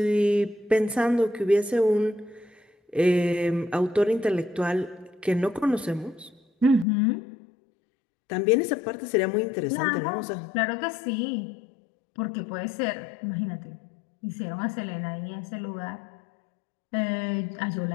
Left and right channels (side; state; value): right; drops out; at 6.9 s